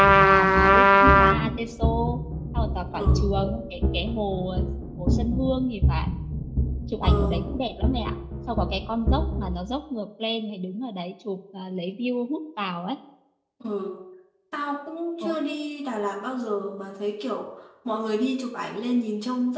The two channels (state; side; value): identical; both; correlation 1.00